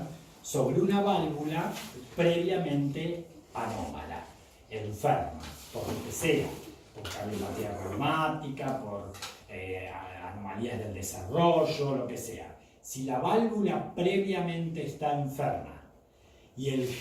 sobre una válvula previamente anómala, enferma, por lo que sea, por cardiopatía reumática, por anomalías del desarrollo, lo que sea. Si la válvula previamente está enferma y el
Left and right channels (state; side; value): identical; both; correlation 1.00